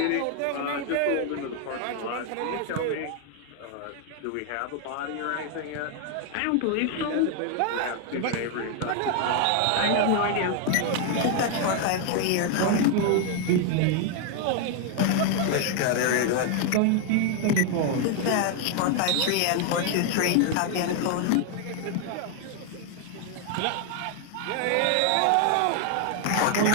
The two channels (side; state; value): both; different; correlation 0.00